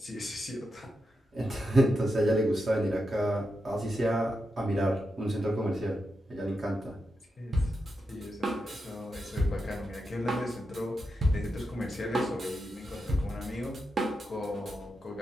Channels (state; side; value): normal; both; correlation 0.87